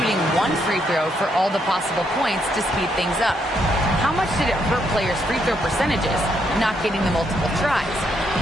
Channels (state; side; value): normal; both; correlation 0.75